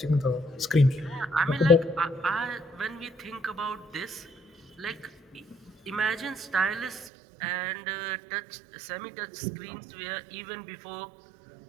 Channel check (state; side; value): drops out; left; at 7.1 s